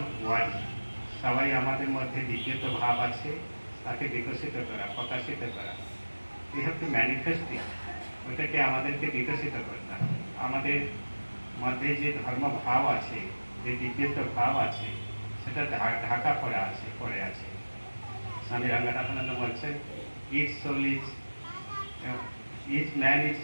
one. সবাই আমাদের মধ্যে দিব্যত্ব ভাব আছে, তাকে বিকশিত করা, প্রকাশিত করা। We have to manifest it. ওটাকে আমাদেরকে বিকশিত করতে হবে। আমাদের মধ্যে যে ধর্ম ভাব আছে, যে দিব্যত্ব ভাব আছে, সেটা ঢাকা পড়ে আছে। স্বামী রঙ্গনাথানন্দ বলছেন, each man is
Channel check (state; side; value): inverted; both; correlation -1.00